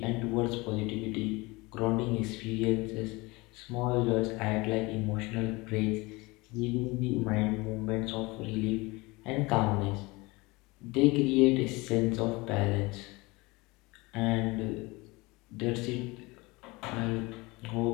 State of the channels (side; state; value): right; quieter; 23.7 dB